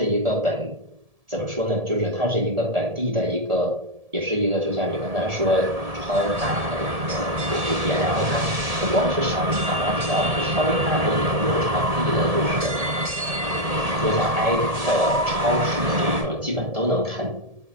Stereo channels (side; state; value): left; late; 1.7 ms